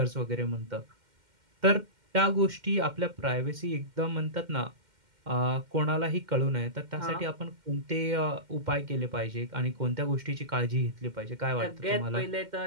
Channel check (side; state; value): left; late; 2.1 ms